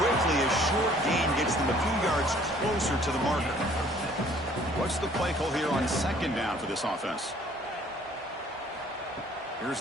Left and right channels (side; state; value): both; normal; correlation 0.57